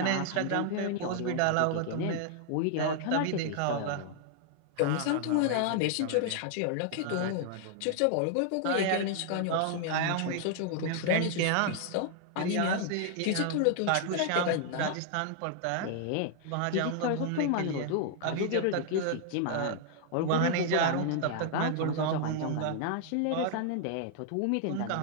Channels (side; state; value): both; different; correlation 0.00